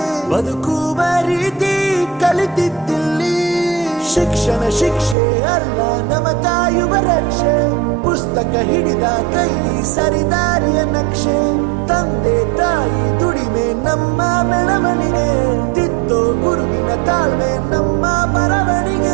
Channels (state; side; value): drops out; left; at 5.2 s